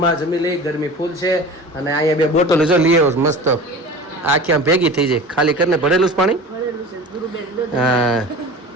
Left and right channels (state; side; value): normal; both; correlation 0.36